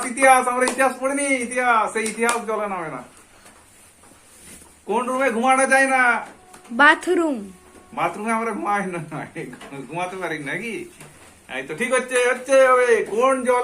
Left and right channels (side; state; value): both; identical; correlation 1.00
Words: ইতিহাস আমরা ইতিহাস পড়িনি? ইতিহাস, সেই ইতিহাস জলে নামে না। কোন রুমে ঘুমানো যায় না? বাথরুম। বাথরুমে আমরা ঘুমাই না, ঘুমাতে পারি নাকি? এই তো ঠিক হচ্ছে, হচ্ছে হবে।